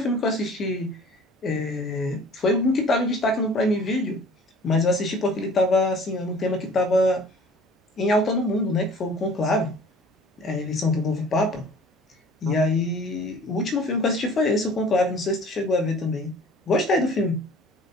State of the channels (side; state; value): both; normal; correlation 0.48